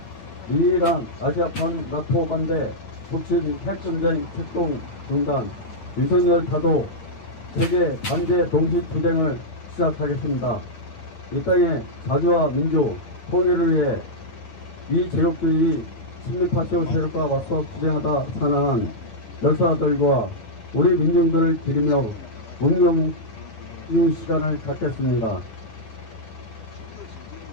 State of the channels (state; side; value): late; right; 9.5 ms